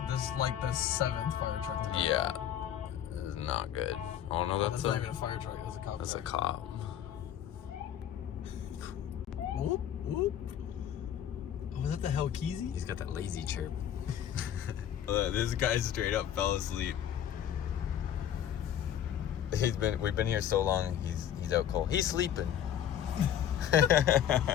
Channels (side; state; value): right; quieter; 10.1 dB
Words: This is like the 7th fire truck today. Yeah, it is not good. Oh no, that's not even a fire truck, that's a cop. That's a cop. Whoop, whoop. Oh, was that the Hellkeezy? He's got that lazy chirp. This guy straight up fell asleep. We've been here so long, he's out cold. He's sleeping.